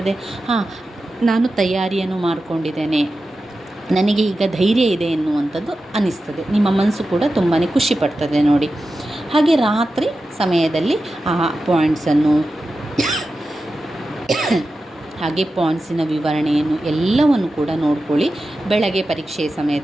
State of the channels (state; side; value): normal; both; correlation 0.92